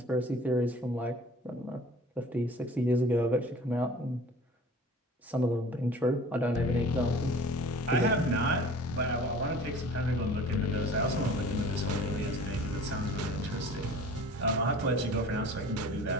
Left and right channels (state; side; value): normal; both; correlation 0.45